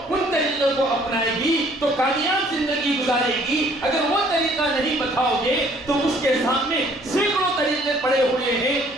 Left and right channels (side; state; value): both; normal; correlation 0.59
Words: ان طریقوں کو اپنائے گی تو کامیاب زندگی گزارے گی۔ اگر وہ طریقہ نہیں بتاؤ گے تو اس کے سامنے سینکڑوں طریقے پڑے ہوئے ہیں